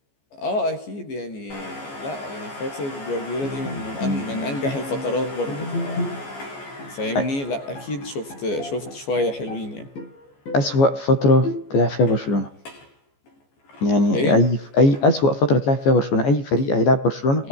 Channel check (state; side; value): late; right; 14 ms